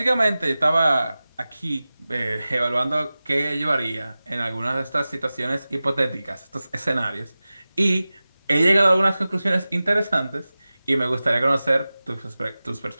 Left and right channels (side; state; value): both; inverted; correlation -0.97